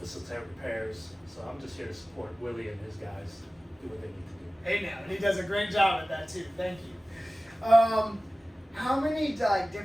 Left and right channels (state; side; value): normal; both; correlation 0.97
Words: repairs. So I'm just here to support Willie and his guys do what they need to do. Hey now, and he does a great job at that too. Thank you. How many